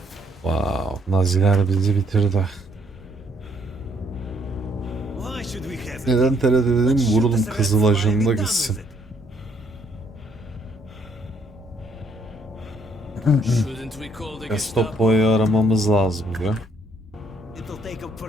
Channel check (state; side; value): normal; both; correlation 0.68